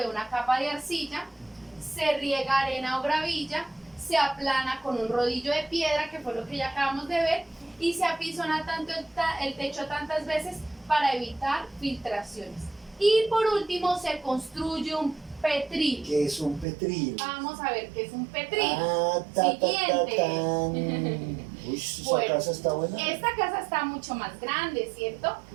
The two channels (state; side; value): drops out; left; at 16.7 s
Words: una capa de arcilla, se riega arena o gravilla, se aplana con un rodillo de piedra, que fue lo que ya acabamos de ver, y se apisona tanto el techo tantas veces para evitar filtraciones. Y por último se construye un petril. ¿Qué es un petril? Vamos a ver qué es un petril. Ah, Siguiente. tan. Uy, esa Bueno, casa está buena. Esta casa está mucho más grande, ¿cierto?